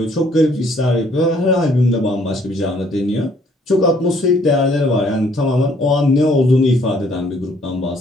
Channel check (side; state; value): both; normal; correlation 0.63